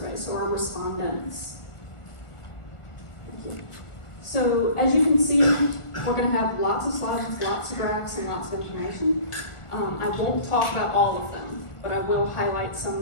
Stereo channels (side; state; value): right; late; 1.4 ms